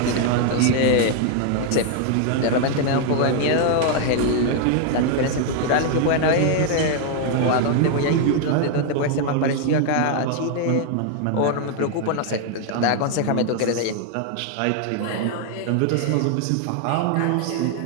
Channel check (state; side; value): different; both; correlation 0.00